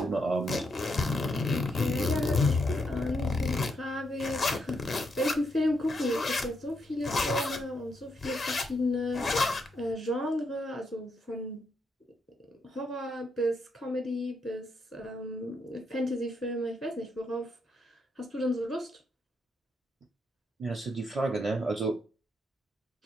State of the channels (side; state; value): both; normal; correlation 0.79